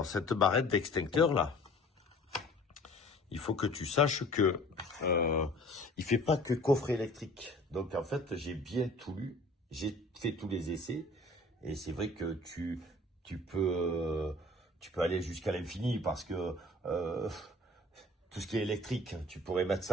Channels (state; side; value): normal; both; correlation 0.49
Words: cette barrette d'extincteur là, il faut que tu saches que il fait pas que coffret électrique. Donc en fait, j'ai bien tout lu, j'ai fait tous les essais et c'est vrai que tu peux aller jusqu'à l'infini parce que tout ce qui est électrique, tu pourrais mettre